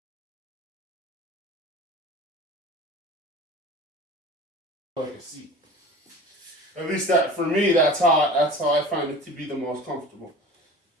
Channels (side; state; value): both; normal; correlation 0.38